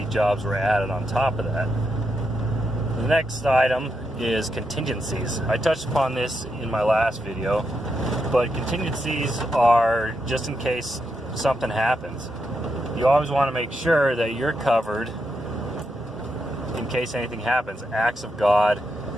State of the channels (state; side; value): normal; both; correlation 0.83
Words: jobs were added on top of that. The next item is contingencies. I touched upon this in my last video, but contingencies are just in case something happens. You always want to make sure that you're covered in case anything happens. Acts of God,